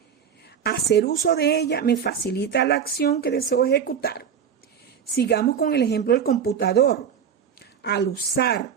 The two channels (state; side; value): quieter; left; 7.8 dB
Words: hacer uso de ella me facilita la acción que deseo ejecutar. Sigamos con el ejemplo del computador. Al usar